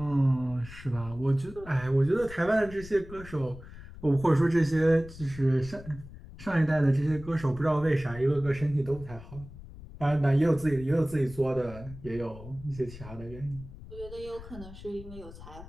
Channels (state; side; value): noise; left; rumble, 16 dB below the sound